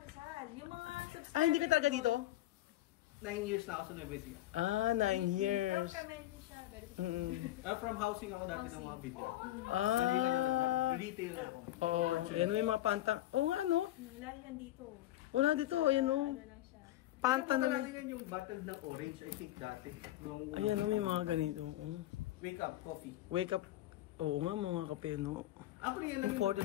Rizal. Yung mga subscribers. Hindi ka talaga dito? 9 years na ako sa Nueva Ecija. 9 years. Permanent siya. From housing ako dati ng mga video. Retail ako. Oo. Yan may mga panta. Oo nga, ano? Lagi yan dito. Wala dito, ayan o. Ano lang siya. Panta na may. Yan yung bottle ng orange, I think dati. Nung Ayan o, may mga ganito. Oh. wake up coffee. Wake up. Oo nga, mga kape, no? Ako rin yan.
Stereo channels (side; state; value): right; quieter; 14.8 dB